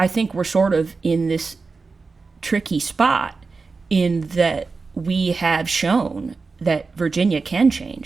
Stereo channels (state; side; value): quieter; left; 4.3 dB